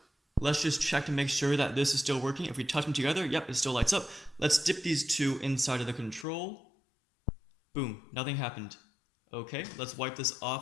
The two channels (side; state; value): right; drops out; at 6.2 s